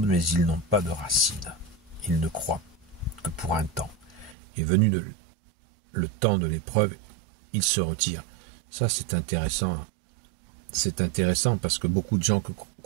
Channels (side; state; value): left; drops out; at 4.4 s